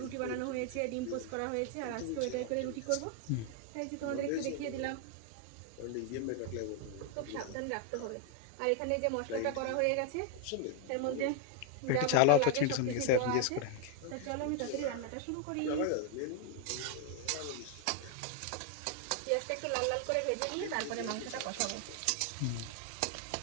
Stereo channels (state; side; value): different; both; correlation 0.00